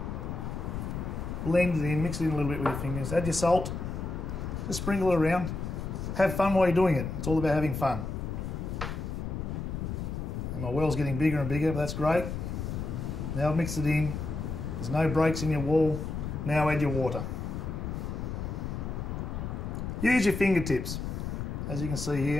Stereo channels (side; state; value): left; noise; rumble, 4 dB below the sound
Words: Blend it in, mix it in a little bit with your fingers. Add your salt, just sprinkle it around. Have fun while you're doing it. It's all about having fun. And my well's getting bigger and bigger, but that's great. Now I've mixed it in. There's no breaks in your wall. Now add your water. Use your fingertips. As you can see